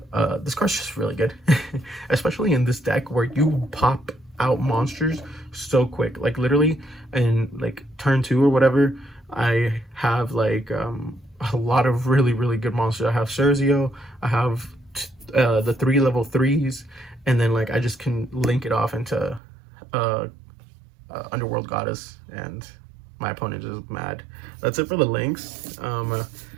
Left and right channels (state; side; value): drops out; left; at 19.4 s